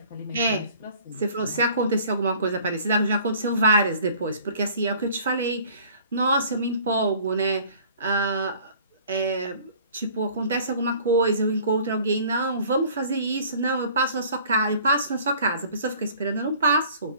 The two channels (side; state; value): both; inverted; correlation -0.51